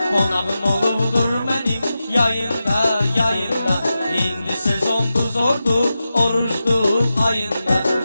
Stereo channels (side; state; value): both; inverted; correlation -0.92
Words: Qonağım olubdur mənim yayında, yayında. İndi sezondu zordu, oruçdu ayında.